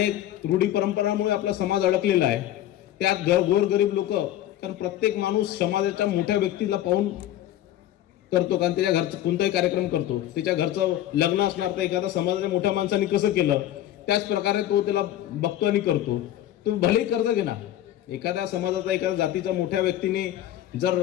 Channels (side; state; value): right; quieter; 12.7 dB